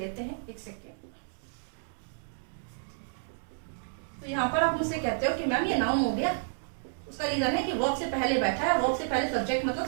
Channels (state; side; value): silent; left; digital silence